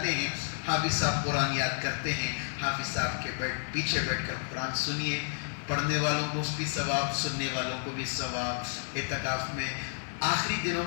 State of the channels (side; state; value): right; silent; 57 dB below the other